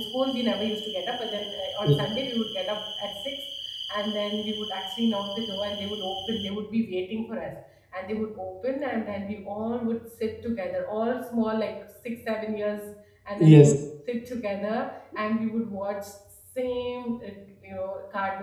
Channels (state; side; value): identical; both; correlation 1.00